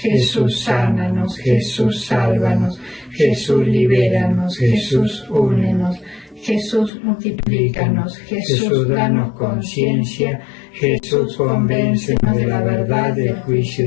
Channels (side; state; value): right; drops out; at 6.9 s